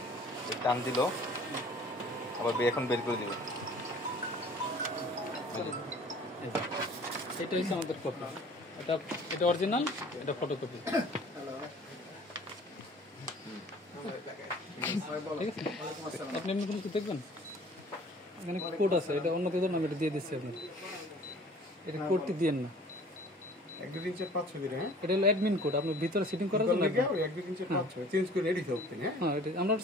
টান দিল আবার এখন বের করে দিল। এটা হচ্ছে আমাদের কপি, এটা অরিজিনাল, এটা ফটোকপি, ঠিক আছে। আপনি এমনি কোনো কিছু দেখবেন, এখানে কোড আছে, এটা অন্য কেউ আমি এটা দিয়ে দিচ্ছি আপনার, এটা কোডটি দিয়েন না, 1 2 3 4 5 6 দিন। হ্যাঁ, এটা হলো অ্যাডমিন কোড, আপনার ভিতরে সিটিং করার জন্য। 1 2 3 4 5 6 চেঞ্জ করে রেডি থাকতে। হ্যাঁ, হ্যাঁ এটা আমরা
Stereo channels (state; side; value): normal; both; correlation 0.49